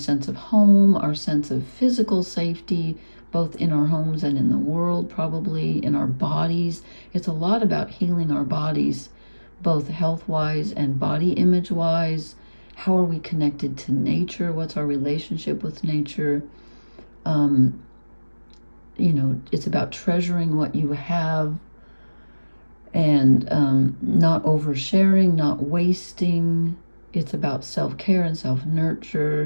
of home, our sense of physical safety, both in our homes and in the world, probably in our bodies. It's a lot about healing our bodies, both health-wise and body image-wise. How are we connected to nature? What's our relationship with nature? It's about treasuring what you have, and not oversharing, not wasting. It's about self-care and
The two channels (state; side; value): inverted; both; correlation -1.00